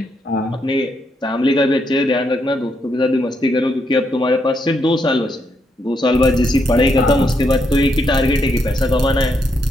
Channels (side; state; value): both; normal; correlation 0.78